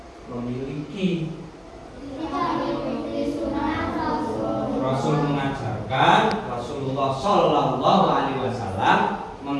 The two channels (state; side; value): identical; both; correlation 1.00